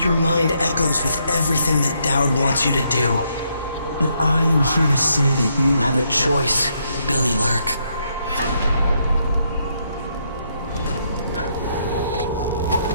mind echoes with everything that Dowd wants you to do. But I am here to say that you have a choice, Billy Lurk.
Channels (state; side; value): inverted; both; correlation -0.75